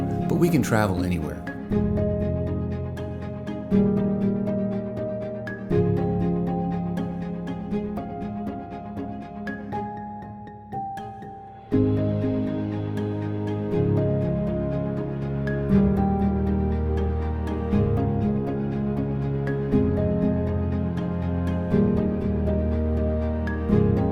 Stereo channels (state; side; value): identical; both; correlation 1.00